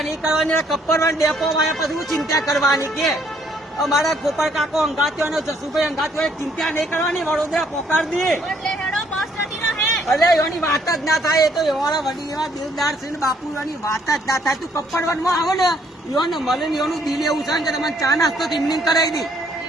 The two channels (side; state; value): both; normal; correlation 0.66